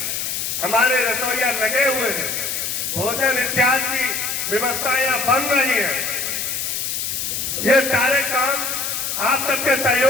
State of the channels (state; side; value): noise; left; hiss, 2 dB below the sound